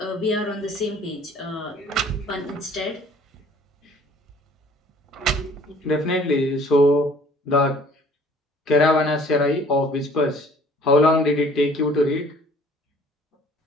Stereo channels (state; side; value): normal; both; correlation 0.53